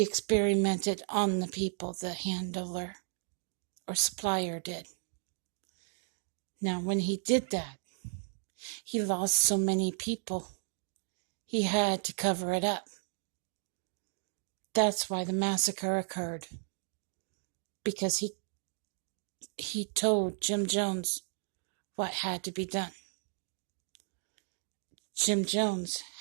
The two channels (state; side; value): silent; left; 55 dB below the other